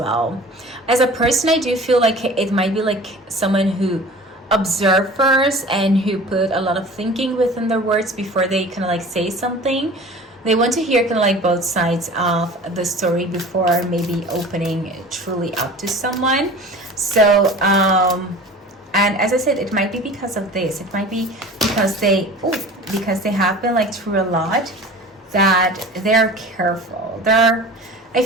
As a person, I do feel like it might be like someone who observe first and who put a lot of thinking within their words before they kind of like say something. They want to hear kind of like both sides of the story before maybe opening truly up to someone. So and as I said, it might be because of this. It might be because they have been like through a lot, that they're careful. I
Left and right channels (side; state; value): both; normal; correlation 0.41